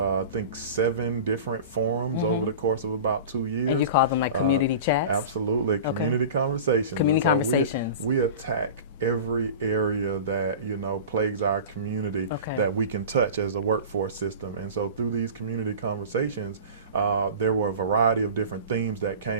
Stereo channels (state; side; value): inverted; both; correlation -0.35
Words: think, 7 different forums over the course of about 2 years. And you call them like community chats? Absolutely, community conversations. Community conversations. We attack every area that, you know, plagues our community that we can touch as a workforce system. And so through these community conversations, there were a variety of different themes that